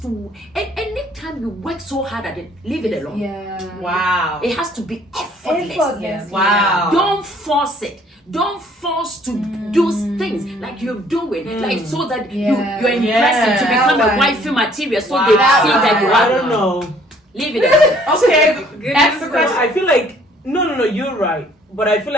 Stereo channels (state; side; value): normal; both; correlation 0.60